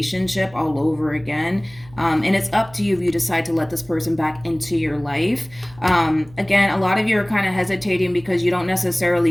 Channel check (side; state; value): right; noise; hum, 23 dB below the sound